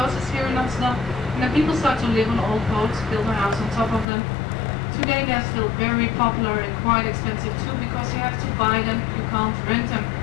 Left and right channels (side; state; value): right; drops out; at 4.0 s